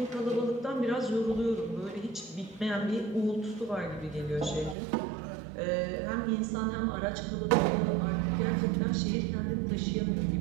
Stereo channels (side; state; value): left; drops out; at 4.8 s